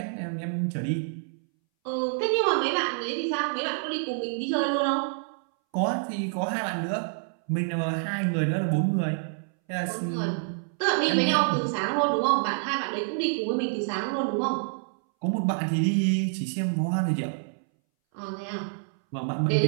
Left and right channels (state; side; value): silent; left; 60 dB below the other